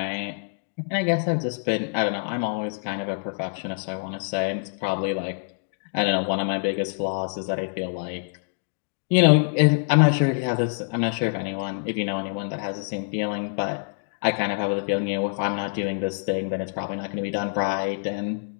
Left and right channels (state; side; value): silent; right; digital silence